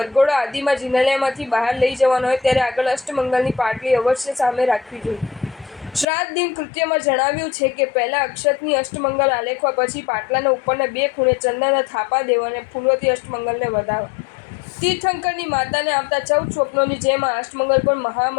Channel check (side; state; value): right; drops out; at 6.1 s